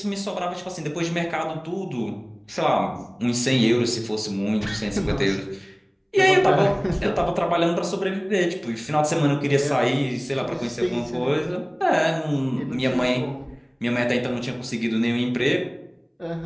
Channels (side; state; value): both; identical; correlation 1.00